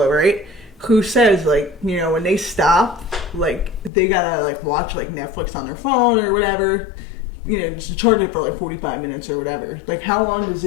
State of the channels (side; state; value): right; drops out; at 3.9 s